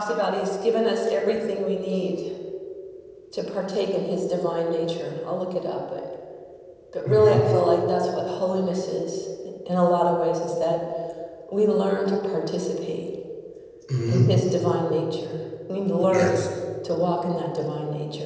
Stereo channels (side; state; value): both; identical; correlation 1.00